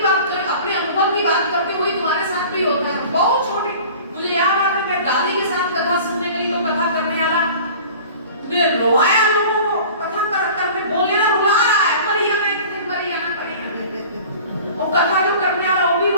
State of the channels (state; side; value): inverted; both; correlation -0.43